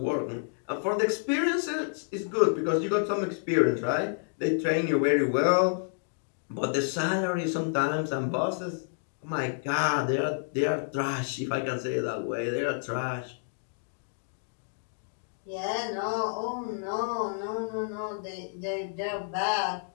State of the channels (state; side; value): silent; right; digital silence